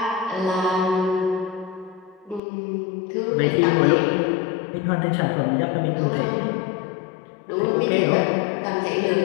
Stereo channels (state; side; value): drops out; right; at 2.4 s